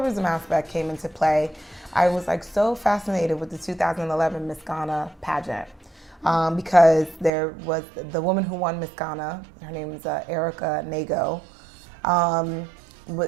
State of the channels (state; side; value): drops out; left; at 7.3 s